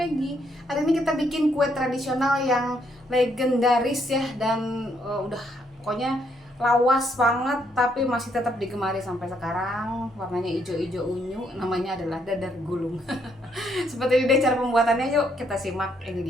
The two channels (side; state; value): both; normal; correlation 0.73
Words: Hari ini kita bikin kue tradisional yang legendaris ya. Dan udah pokoknya lawas banget, tapi masih tetap digemari sampai sekarang. Warnanya hijau-hijau unyu, namanya adalah dadar gulung. Seperti ini deh cara pembuatannya, yuk kita simak, ini